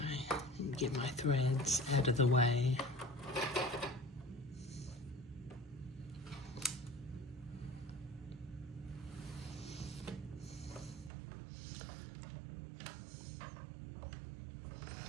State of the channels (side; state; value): left; drops out; at 11.1 s